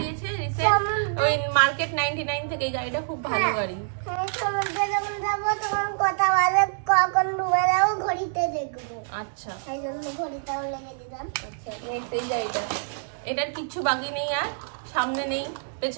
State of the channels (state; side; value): silent; left; digital silence